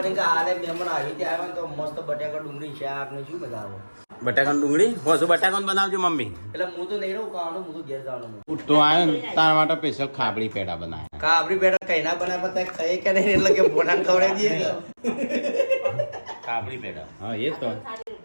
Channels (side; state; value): both; inverted; correlation -1.00